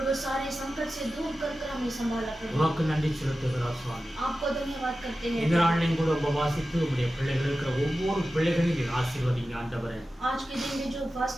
सारे संकट से दूर कर हमें संभाला प्रभु। உமக்கு நன்றி செலுத்துகிறோம் சுவாமி. आपको धन्यवाद करते हैं। இந்த நாளிலும் கூட உபவாசித்து உம்முடைய பிள்ளைகள் இருக்கிற ஒவ்வொரு பிள்ளைகளையும் நீர் ஆசீர்வதிங்க ஆண்டவரே. आज के दिन में जो उपवास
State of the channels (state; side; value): normal; both; correlation 0.94